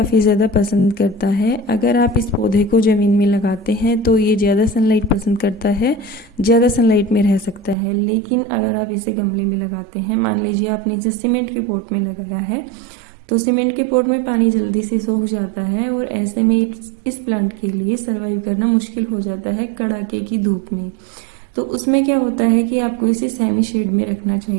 ज़्यादा पसंद करता है। अगर आप इस पौधे को ज़मीन में लगाते हैं तो ये ज़्यादा सनलाइट पसंद करता है, ज़्यादा सनलाइट में रह सकता है। लेकिन अगर आप इसे गमले में लगाते हैं, मान लीजिए आपने इसे सीमेंट के पॉट में लगाया है, तो सीमेंट के पॉट में पानी जल्दी से सूख जाता है और ऐसे में इस प्लांट के लिए सर्वाइव करना मुश्किल हो जाता है कड़ाके की धूप में। तो उसमें क्या होता है कि आपको इसे सेमी शेड में रखना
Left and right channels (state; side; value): drops out; left; at 7.8 s